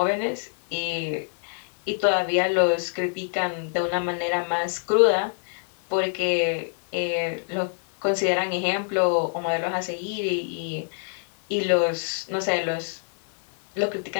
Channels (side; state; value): right; silent; 61 dB below the other